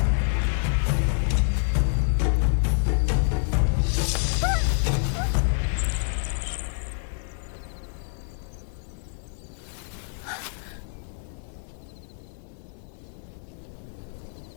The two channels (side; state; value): right; silent; 60 dB below the other